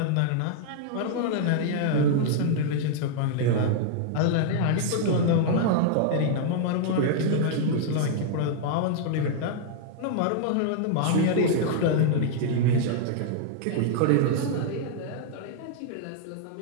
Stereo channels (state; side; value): different; both; correlation -0.01